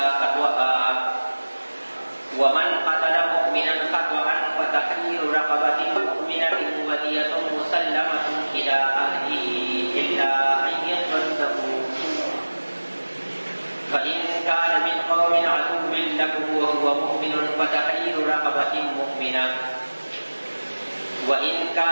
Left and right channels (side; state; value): both; inverted; correlation -1.00